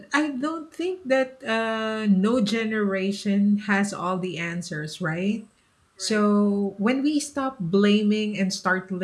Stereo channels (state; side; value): identical; both; correlation 1.00